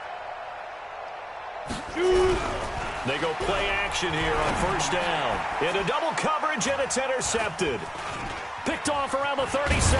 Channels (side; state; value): both; identical; correlation 1.00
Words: run. They go play action here on first down. Into double coverage, and it's intercepted. Picked off around the 37,